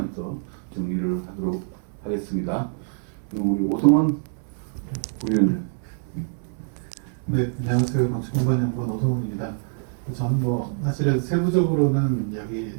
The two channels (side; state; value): left; silent; 59 dB below the other